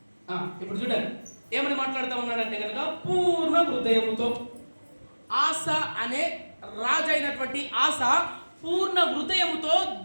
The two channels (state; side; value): inverted; both; correlation -1.00